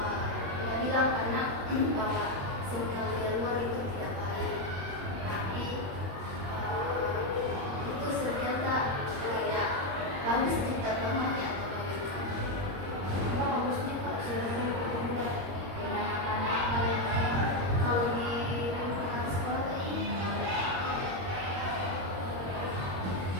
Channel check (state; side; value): late; left; 21 ms